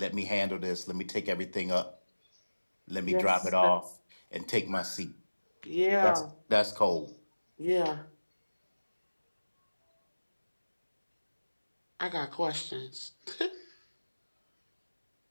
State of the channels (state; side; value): inverted; both; correlation -1.00